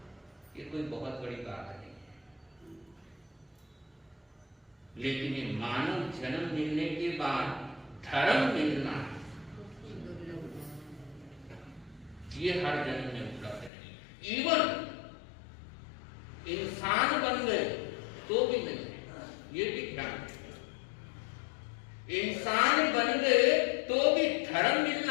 ये कोई बहुत बड़ी बात नहीं है, लेकिन ये मानव जन्म मिलने के बाद धर्म मिलना ये हर जन्म में उपलब्ध नहीं। इवन इंसान बन गए तो भी नहीं है, ये भी ध्यान रखिए। इंसान बन गए तो भी धर्म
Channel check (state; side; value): drops out; right; at 13.7 s